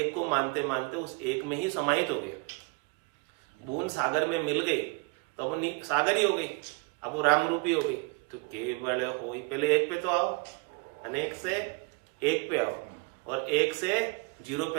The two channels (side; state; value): left; quieter; 29.8 dB